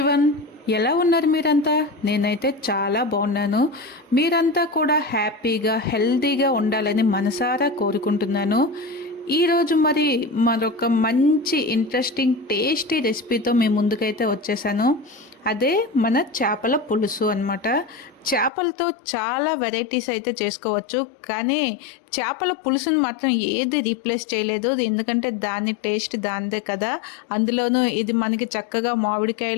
ఎలా ఉన్నారు మీరంతా? నేనైతే చాలా బాగున్నాను. మీరంతా కూడా హ్యాపీగా హెల్తీగా ఉండాలని మనసారా కోరుకుంటున్నాను. ఈరోజు మరొక మంచి ఇంట్రెస్టింగ్ టేస్టీ రెసిపీతో మీ ముందుకైతే వచ్చేసాను. అదే మన చేపల పులుసు అనమాట. చేపలతో చాలా వెరైటీస్ అయితే చేసుకోవచ్చు, కానీ చేపల పులుసుని మాత్రం ఏది రీప్లేస్ చేయలేదు. ఎందుకంటే దాని టేస్ట్ దానిదే కదా. అందులోనూ ఇది మనకి చక్కగా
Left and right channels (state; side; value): drops out; right; at 18.5 s